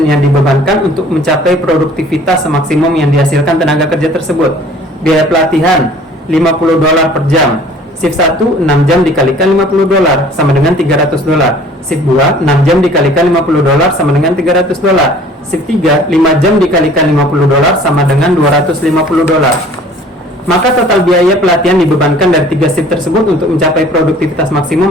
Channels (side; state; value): both; normal; correlation 0.51